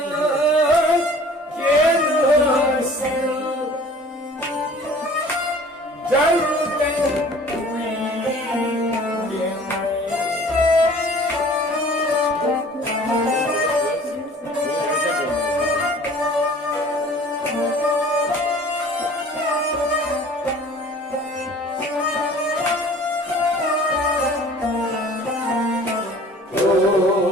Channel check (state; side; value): normal; both; correlation 0.48